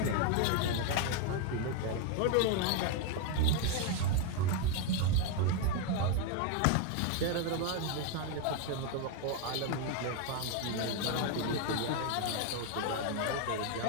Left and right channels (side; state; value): both; different; correlation 0.01